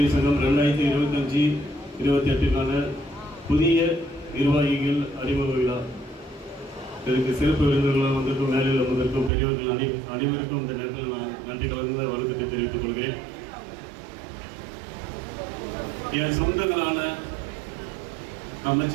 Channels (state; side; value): drops out; left; at 9.3 s